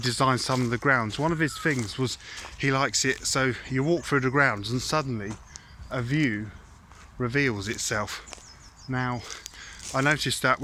some of the grounds, one of his things was he likes it so you walk through the grounds and suddenly a view reveals itself. Now I noticed that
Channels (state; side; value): identical; both; correlation 1.00